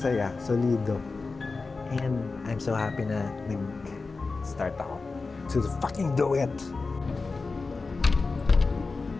solido. And I'm so happy na nag-start ako. So fucking do it!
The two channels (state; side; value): quieter; right; 4.0 dB